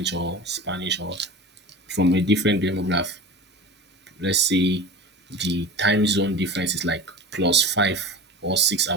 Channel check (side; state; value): both; normal; correlation 0.33